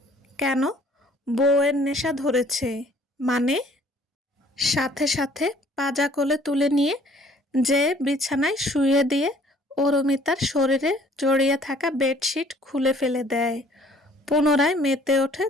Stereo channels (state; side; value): normal; both; correlation 0.57